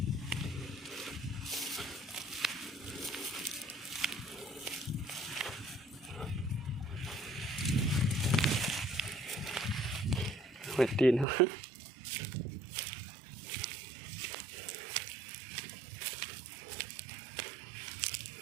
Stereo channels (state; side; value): drops out; left; at 11.2 s